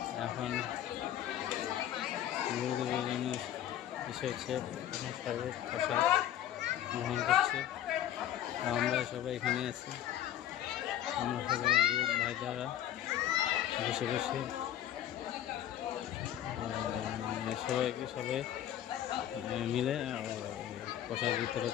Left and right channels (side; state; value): right; quieter; 11.7 dB